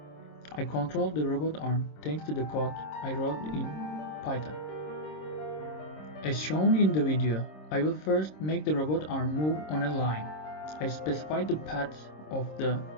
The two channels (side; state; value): right; late; 26 ms